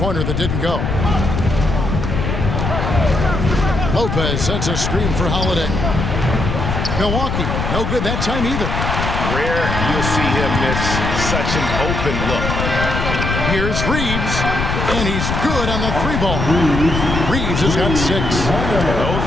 that didn't go. Lopez sets a screen for Holiday. Milwaukee, no good that time either. Rare you'll see him miss such an open look. Here's Reeves, and he's good on the 3-ball. Reeves has got 6. Those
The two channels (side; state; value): left; noise; rumble, 2 dB below the sound